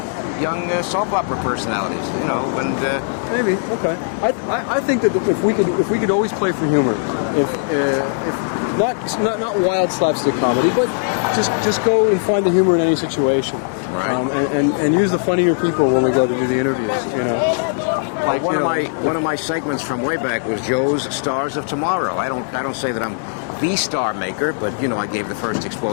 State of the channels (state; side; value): silent; right; digital silence